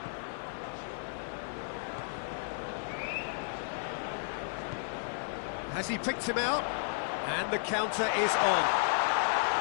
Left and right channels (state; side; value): silent; right; 56 dB below the other